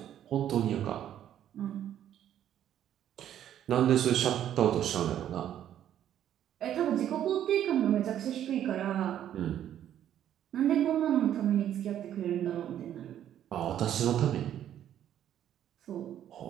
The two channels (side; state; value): left; quieter; 10.8 dB